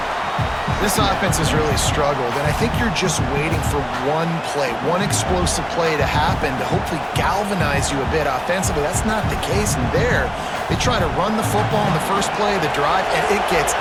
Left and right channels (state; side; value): identical; both; correlation 1.00